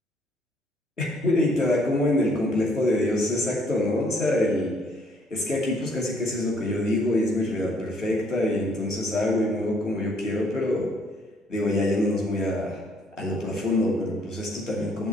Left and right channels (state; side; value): normal; both; correlation 0.65